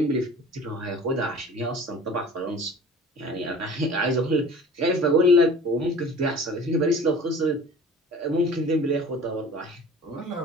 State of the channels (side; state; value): both; normal; correlation 0.44